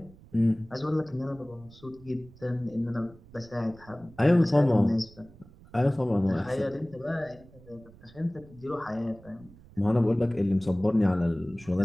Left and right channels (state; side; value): noise; right; rumble, 23 dB below the sound